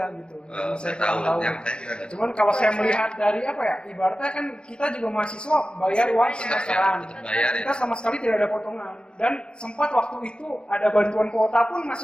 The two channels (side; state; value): right; late; 0.052 ms